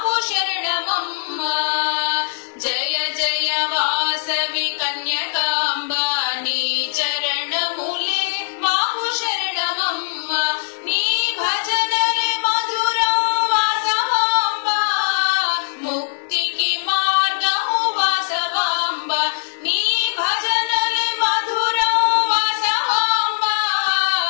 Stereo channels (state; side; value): silent; right; 66 dB below the other